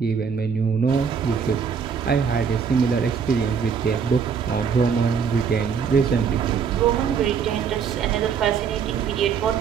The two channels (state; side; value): quieter; left; 6.5 dB